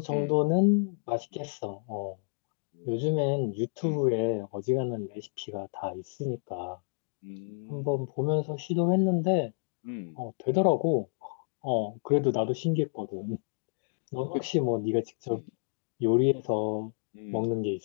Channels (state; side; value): silent; right; digital silence